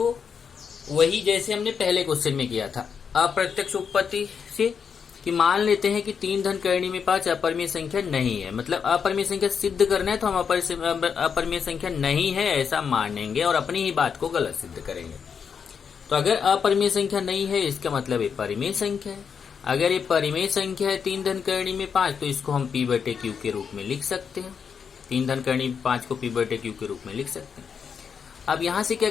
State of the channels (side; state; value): right; quieter; 6.6 dB